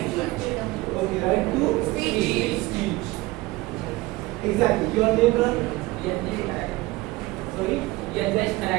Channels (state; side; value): quieter; left; 20.5 dB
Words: Okay, right to speech. Exactly. Your name, brother? Sorry? Yadnesh.